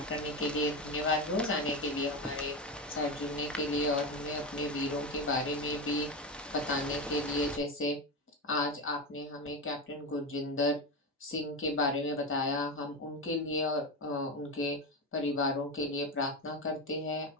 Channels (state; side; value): normal; both; correlation 0.17